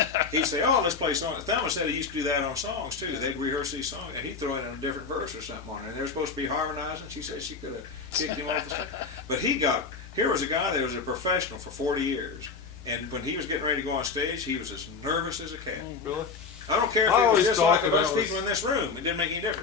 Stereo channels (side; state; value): right; quieter; 5.0 dB